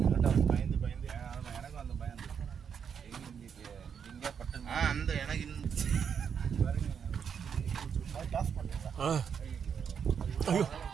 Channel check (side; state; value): left; quieter; 7.2 dB